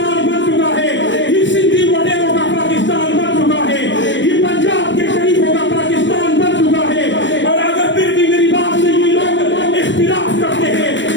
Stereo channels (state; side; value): late; right; 0.54 ms